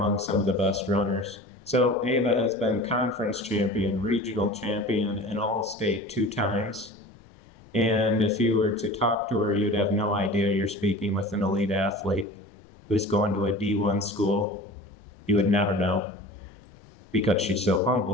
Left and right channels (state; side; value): noise; left; rumble, 28 dB below the sound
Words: some of the best runners. So Ava has been conference champion, regional champion, and all-state 2 times. And if you were to talk to her, you'd have no idea you're speaking with an elite athlete who's going to a D1 school. You would never know because she's so